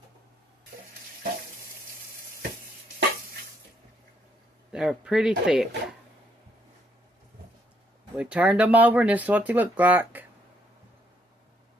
They're pretty thick. We turned them over and this is what they look like.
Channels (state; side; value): normal; both; correlation 0.71